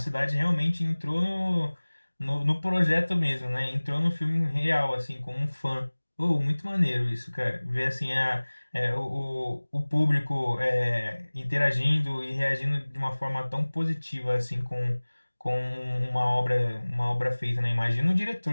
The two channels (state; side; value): inverted; both; correlation -1.00